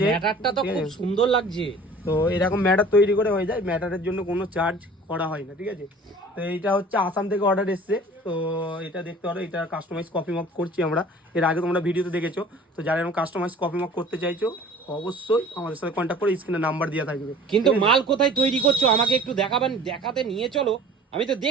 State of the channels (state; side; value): normal; both; correlation 0.46